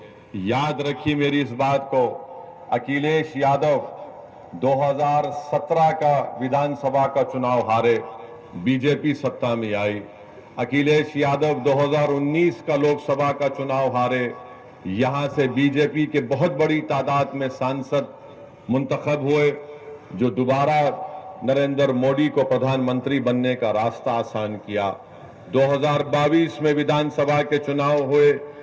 याद रखिए मेरी इस बात को, अखिलेश यादव 2017 का विधानसभा का चुनाव हारे, बीजेपी सत्ता में आई। अखिलेश यादव 2019 का लोकसभा का चुनाव हारे, यहां से बीजेपी के बहुत बड़ी तादाद में सांसद मुंतखब हुए, जो दोबारा नरेंद्र मोदी को प्रधानमंत्री बनने का रास्ता आसान किया। 2022 में विधानसभा के चुनाव हुए,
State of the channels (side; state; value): both; identical; correlation 1.00